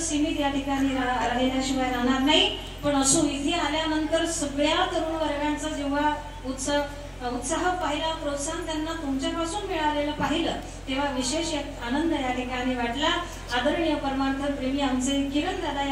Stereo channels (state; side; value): identical; both; correlation 1.00